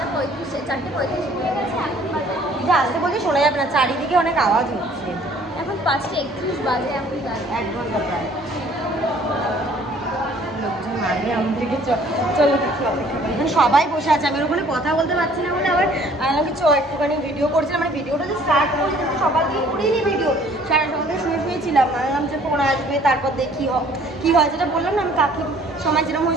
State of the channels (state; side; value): normal; both; correlation 0.56